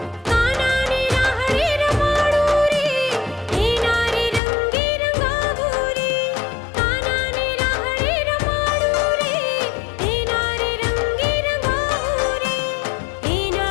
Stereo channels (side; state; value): right; drops out; at 4.4 s